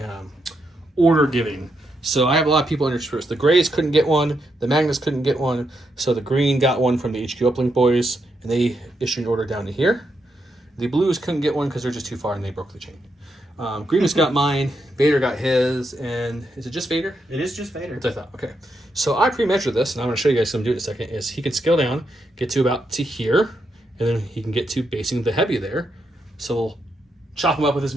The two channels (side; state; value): both; normal; correlation 0.81